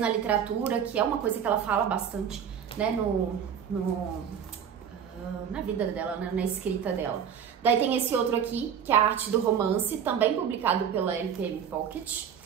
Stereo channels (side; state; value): left; quieter; 8.0 dB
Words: literatura, que é uma coisa que ela fala bastante, né, na vida dela, né, na escrita dela. Daí tem esse outro aqui, que é a Arte do Romance, também publicado pela LPM Pocket.